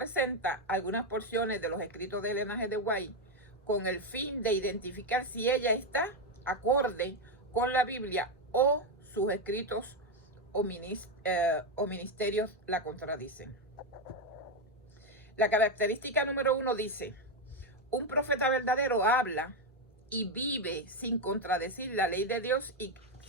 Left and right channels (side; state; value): both; normal; correlation 0.06